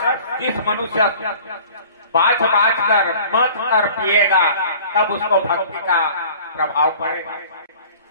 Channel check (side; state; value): both; inverted; correlation -0.47